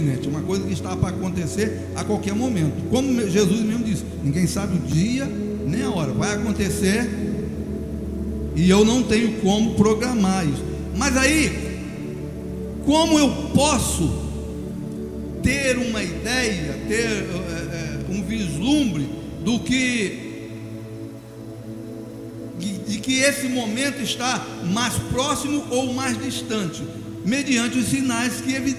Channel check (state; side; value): identical; both; correlation 1.00